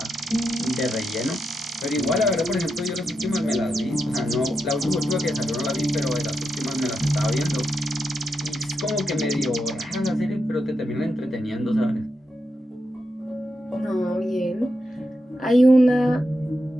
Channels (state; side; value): normal; both; correlation 0.86